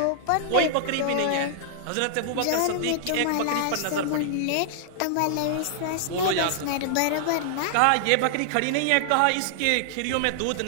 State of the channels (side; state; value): both; different; correlation -0.01